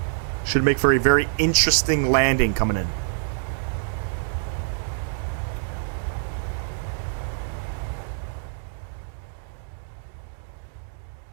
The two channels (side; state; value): left; silent; digital silence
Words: Should make for a very interesting landing coming in.